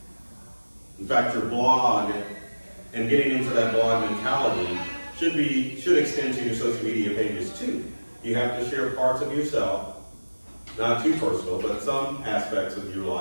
In fact, your blog and getting into that blog mentality should extend to your social media pages too. You have to share parts of yourself, not too personal, but some aspects of your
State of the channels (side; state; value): both; inverted; correlation -1.00